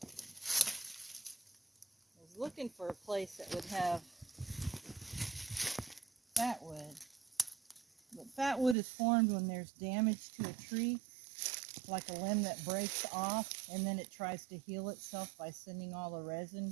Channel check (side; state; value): left; drops out; at 8.8 s